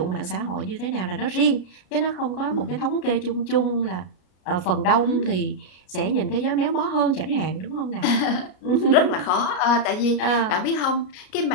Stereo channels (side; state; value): right; late; 33 ms